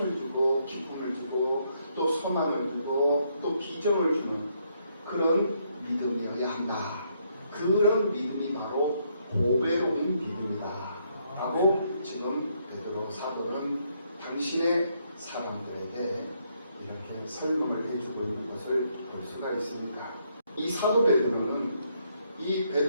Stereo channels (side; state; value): both; inverted; correlation -0.73